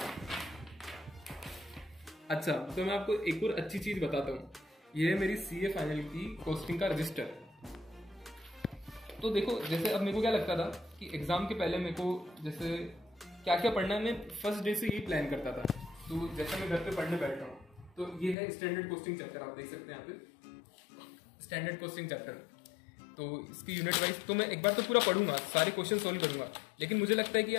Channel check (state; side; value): drops out; right; at 18.4 s